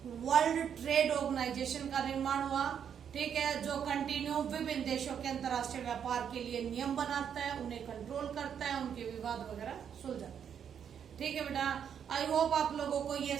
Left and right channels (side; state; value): left; quieter; 8.2 dB